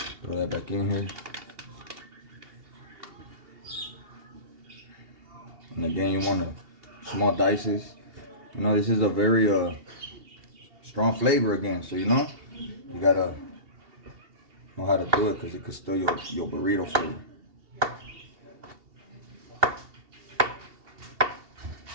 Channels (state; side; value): late; left; 2.7 ms